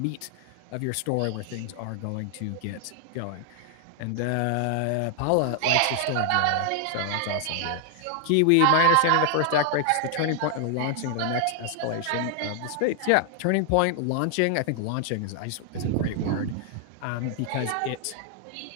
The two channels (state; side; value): different; both; correlation 0.00